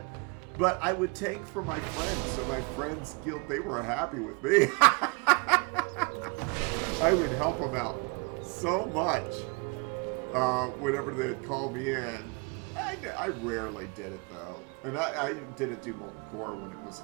But I would tank for my friends, so my friends' guild, they were happy with me. I would help them out so much whenever they'd call me in. I rarely did it, though. And I didn't do Molten Core when it was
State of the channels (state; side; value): quieter; left; 31.9 dB